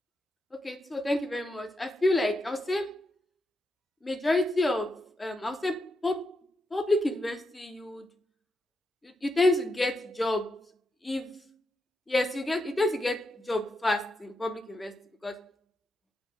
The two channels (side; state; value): both; normal; correlation 0.84